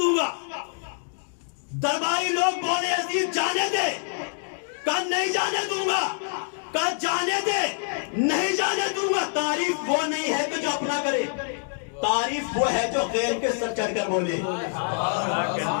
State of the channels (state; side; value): silent; right; digital silence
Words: گا. درباری لوگ بولے عزیز جانے دے, کہا نہیں جانے دوں گا. کہا جانے دے, نہیں جانے دوں گا. تعریف وہ نہیں ہے کہ جو اپنا کرے, تعریف وہ ہے جو غیر کے سر چڑھ کر بولے.